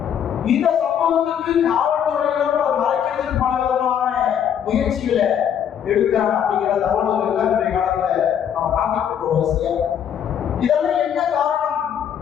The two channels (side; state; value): right; quieter; 8.8 dB